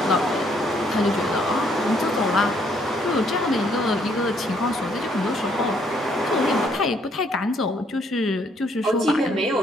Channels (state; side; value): normal; both; correlation 0.67